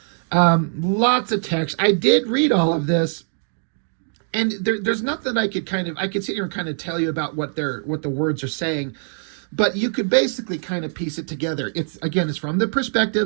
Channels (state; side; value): silent; left; digital silence